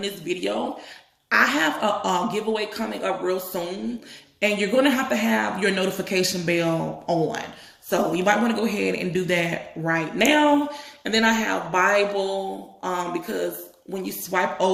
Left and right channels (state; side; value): identical; both; correlation 1.00